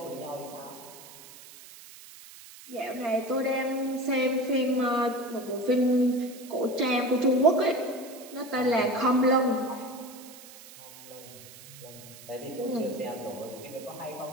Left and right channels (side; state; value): right; noise; hiss, 18 dB below the sound